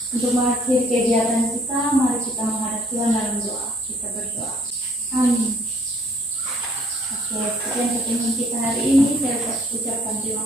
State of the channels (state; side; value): normal; both; correlation 0.60